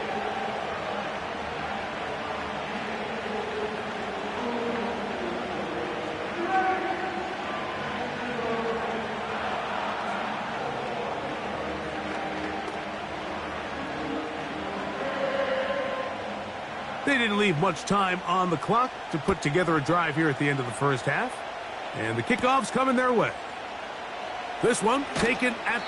They didn't leave much time on the clock to put together a drive here at the end of the first half. And the kickoff's coming their way. This one taken at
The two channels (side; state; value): both; identical; correlation 1.00